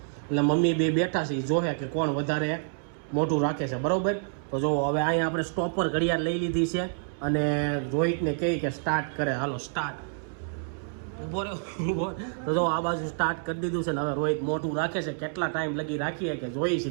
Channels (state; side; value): silent; left; 59 dB below the other